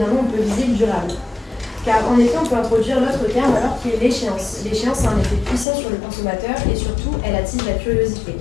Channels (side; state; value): right; drops out; at 5.7 s